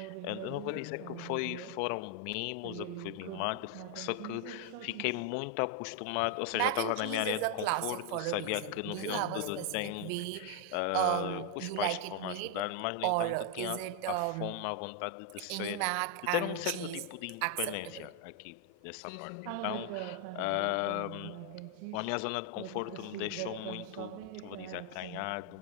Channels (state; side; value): different; both; correlation 0.01